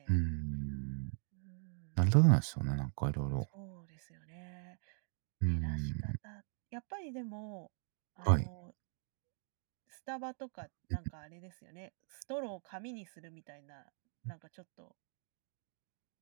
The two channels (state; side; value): silent; left; 51 dB below the other